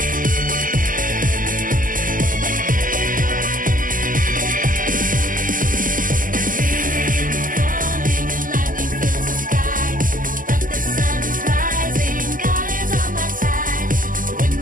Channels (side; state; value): left; late; 0.40 ms